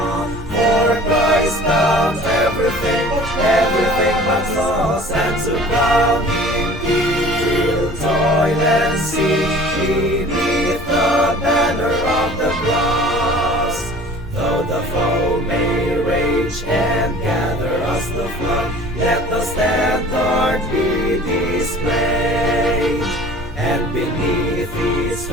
for Christ bound everything, everything but loss, and to crown Him heal, toil and see, beneath the banner of the cross. Though the foe may rage and gather us the flood, let the standard be displayed, and beneath its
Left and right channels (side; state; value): both; normal; correlation 0.46